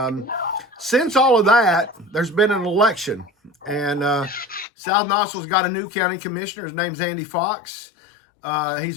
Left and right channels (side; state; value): right; drops out; at 4.7 s